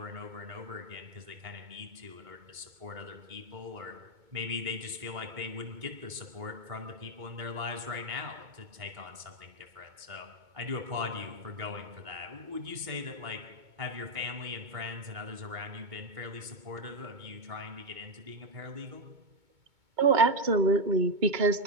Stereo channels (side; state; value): left; late; 2.2 ms